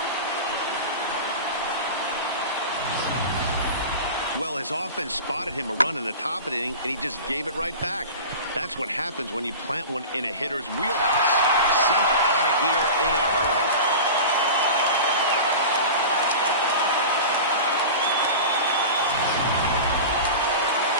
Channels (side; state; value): both; inverted; correlation -0.32